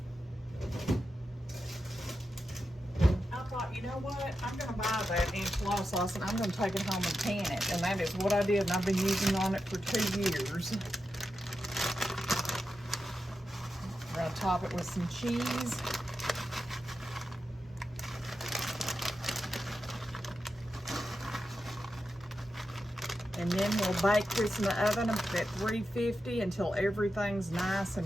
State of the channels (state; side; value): normal; both; correlation 0.89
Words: I thought, you know what? I'm going to buy that enchilada sauce, and I'm going to take it home and can it. And that is what I did, and I've been using on it for 2 years. We're going to top it with some cheese. And then we'll bake this in the oven at 350 until everything's nice